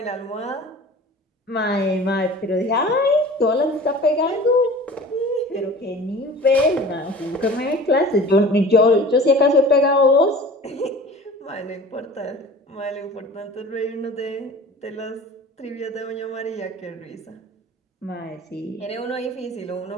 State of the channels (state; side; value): normal; both; correlation 0.41